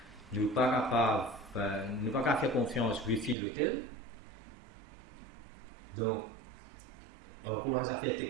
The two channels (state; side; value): drops out; left; at 3.4 s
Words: Nous ne sommes pas capables de faire confiance Wi-Fi l'hôtel. Donc, encore à faire